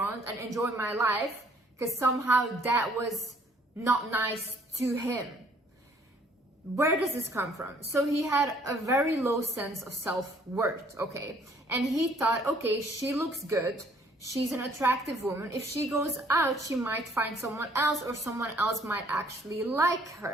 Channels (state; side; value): normal; both; correlation 0.61